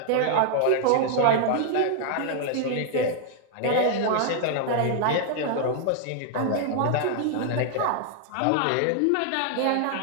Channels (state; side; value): different; both; correlation 0.00